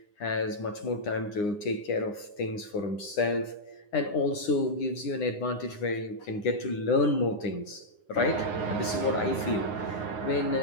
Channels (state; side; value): late; right; 9.7 ms